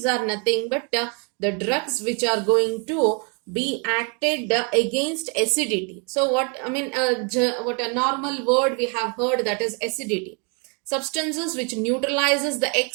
are nothing but the drugs which are going to be acted against acidity. So what a normal word we have heard, that is acidity. Substances which neutralizes the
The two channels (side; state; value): left; quieter; 35.7 dB